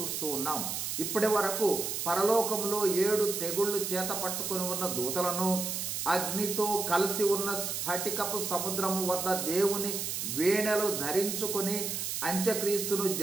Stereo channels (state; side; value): noise; right; hiss, 3 dB below the sound